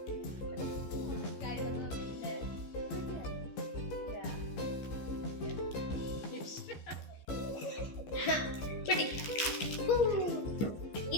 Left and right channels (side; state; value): right; late; 14 ms